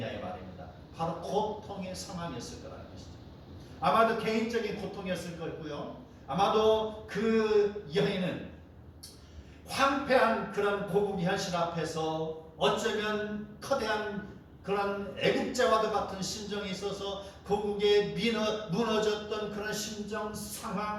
이 말입니다. 바로 고통의 상황이었을 거라는 것이죠. 아마도 개인적인 고통이었을 거고요. 아마도 그 여인은 황폐한 그런 고국 현실 앞에서 어쩌면 커다란 그런 애국자와도 같은 심정이 있어서 고국에 무너졌던 그런 심정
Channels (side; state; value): both; identical; correlation 1.00